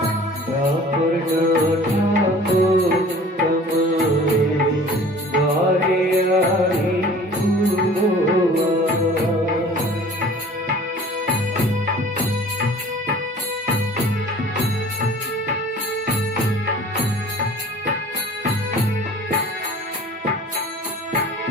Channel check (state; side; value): normal; both; correlation 0.46